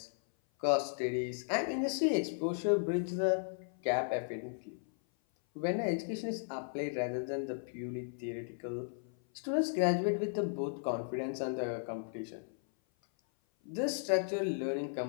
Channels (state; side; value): silent; right; 54 dB below the other